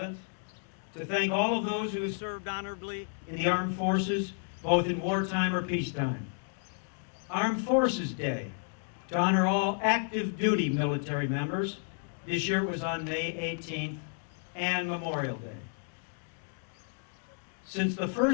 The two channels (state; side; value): silent; right; 57 dB below the other